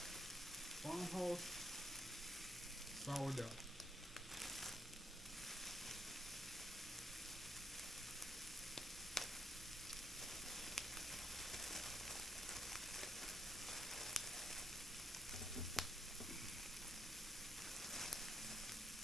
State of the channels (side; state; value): both; normal; correlation 0.75